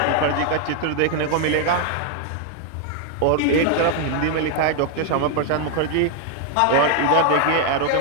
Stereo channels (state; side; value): different; both; correlation 0.00